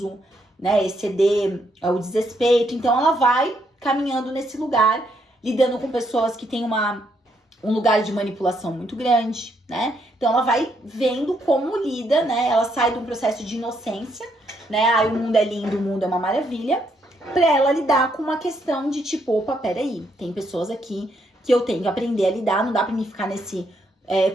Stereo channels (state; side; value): normal; both; correlation 0.74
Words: né? Exceder o desrespeito. Então, ela vai caminhando nesse lugar, lidando com pessoas que têm um lugar de manipulação muito grande, né? Então, ela vai vendo como lida, né? Ela sai de um processo de inocência, né? Aí o mundo é lindo, o mundo é uma maravilha, pra ela lidar com uma questão de tipo, opa, peraí, tem pessoas aqui que eu tenho que aprender a lidar, não dá pra mim ficar nesse